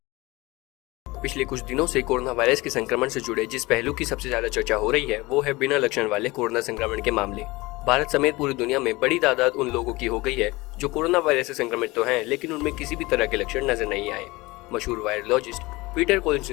पिछले कुछ दिनों से कोरोना वायरस के संक्रमण से जुड़े जिस पहलू की सबसे ज्यादा चर्चा हो रही है वो है बिना लक्षण वाले कोरोना संक्रमण के मामले। भारत समेत पूरी दुनिया में बड़ी तादाद उन लोगों की हो गई है जो कोरोना वायरस से संक्रमित तो हैं, लेकिन उनमें किसी भी तरह के लक्षण नजर नहीं आए। मशहूर वायरोलॉजिस्ट पीटर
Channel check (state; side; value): quieter; right; 21.9 dB